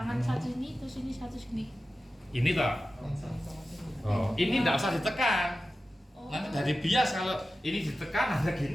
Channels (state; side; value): normal; both; correlation 0.94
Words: satu ini terus ini satu sini. Ini toh. Oh, ini enggak usah ditekan. Nanti dari bias kalau ini ditekan ada